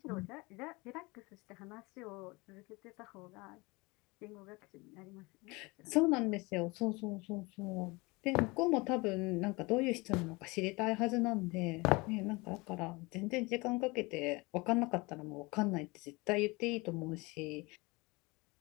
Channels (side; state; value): right; quieter; 25.1 dB